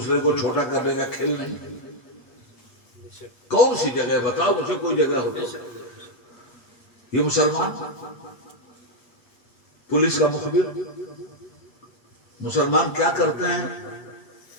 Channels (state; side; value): late; right; 8.3 ms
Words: کو چھوٹا کرنے کا کھیل نہیں؟ کون سی جگہ بتاؤ مجھے، کوئی جگہ ہو تو. یہ مسلمان پولیس کا مخبر. مسلمان کیا کرتے ہیں؟